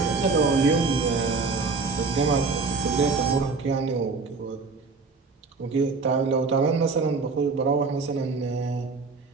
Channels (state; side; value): quieter; left; 4.3 dB